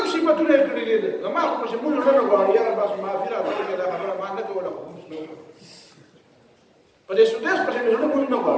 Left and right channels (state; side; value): identical; both; correlation 1.00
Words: صفتونه یې کړي دي. زما خو پسې مونږ نه غواړي، یاره بس معافي راته وکړې، دا خبره ما نه کوله، خو مونږ نه وکړه. په دې سودیس پسې مې زړه مونږ نه